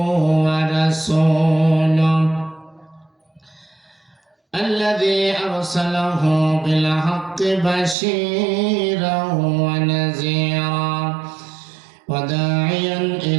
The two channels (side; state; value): left; drops out; at 8.0 s